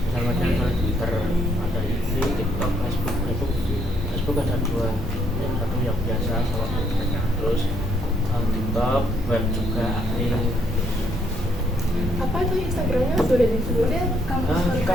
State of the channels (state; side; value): normal; both; correlation 0.71